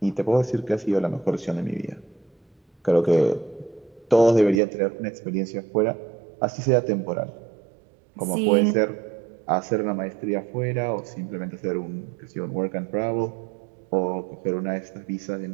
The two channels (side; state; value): left; drops out; at 4.6 s